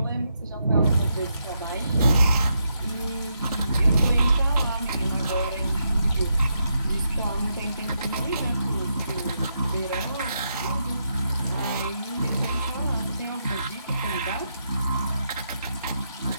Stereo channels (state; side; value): inverted; both; correlation -0.81